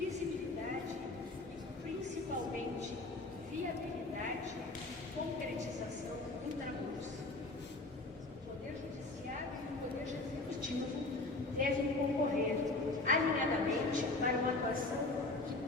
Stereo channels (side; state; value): right; quieter; 3.0 dB